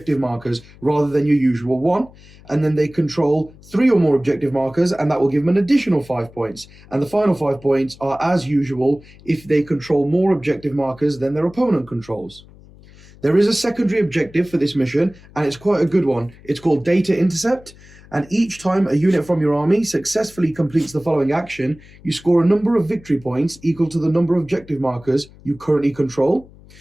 markers rather than your usual 1. And then they control 3 or more objective markers, and that will give them an additional 5 points. And the final 5 points are, as usual, if they control more objective markers than their opponent controls. There is a secondary objective for this mission, and it's quite a good one. It's called Data Intercept, and each time a unit from your army successfully completes the following action, you score a number of victory points equal to the number of objective markers you currently control.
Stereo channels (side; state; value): left; noise; hum, 23 dB below the sound